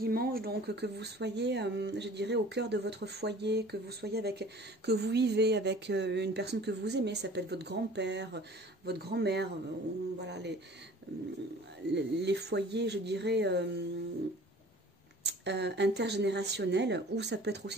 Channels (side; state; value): both; normal; correlation 0.47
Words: donc que vous soyez, je dirais, au cœur de votre foyer, que vous vivez avec une personne que vous aimez, ça peut être votre grand-père, votre grand-mère, voilà, les foyers, je dirais, intergénérationnels, ou ça peut être